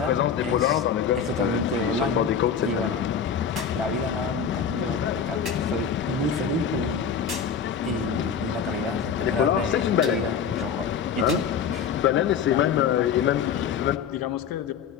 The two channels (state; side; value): quieter; right; 6.9 dB